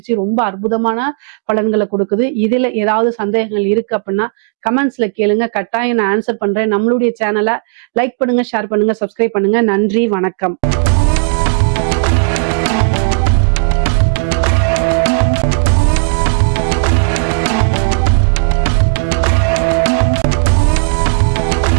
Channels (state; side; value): silent; left; digital silence